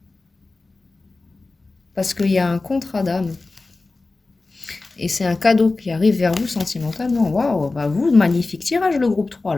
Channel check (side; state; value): right; quieter; 3.5 dB